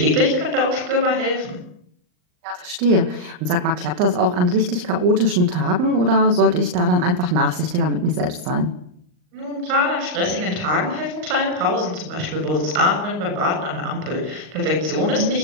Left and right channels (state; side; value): late; left; 39 ms